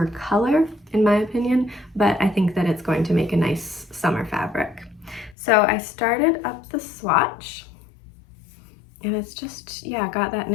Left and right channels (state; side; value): drops out; right; at 5.4 s